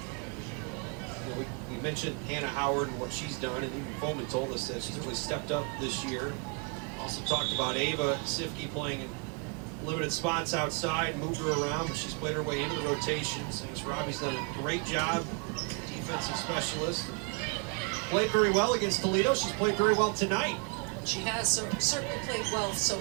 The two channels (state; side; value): quieter; left; 34.5 dB